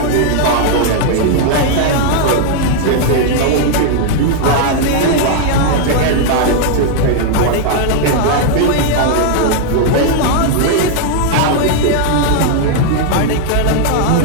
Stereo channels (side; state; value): both; different; correlation 0.00